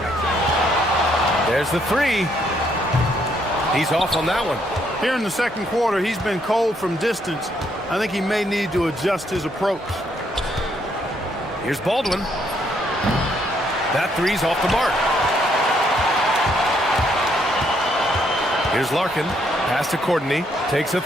There's the three. He's off on that one. Here in the second quarter, he's been cold from distance. I think he may need to adjust his approach. Here's Baldwin. That three's off the mark. Here's Larkin. Pass to Courtney. Takes a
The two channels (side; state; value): both; normal; correlation 0.72